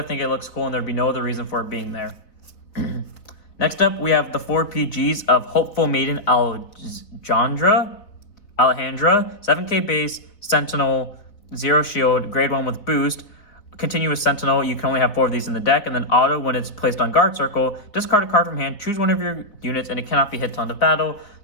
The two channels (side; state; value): right; late; 3.9 ms